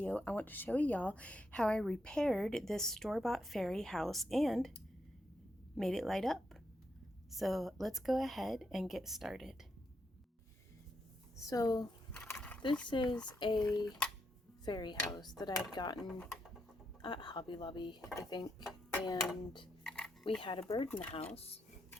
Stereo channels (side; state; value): both; normal; correlation 0.81